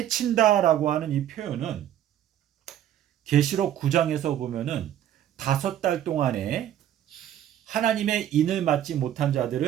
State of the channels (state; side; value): quieter; left; 11.2 dB